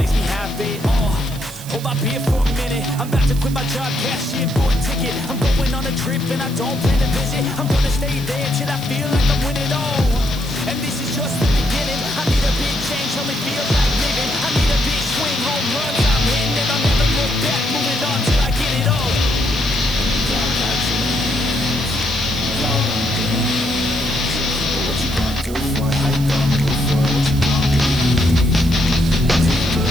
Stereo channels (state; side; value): noise; right; hiss, 15 dB below the sound